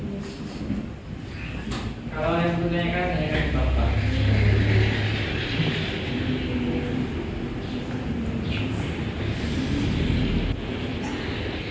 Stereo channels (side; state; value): both; identical; correlation 1.00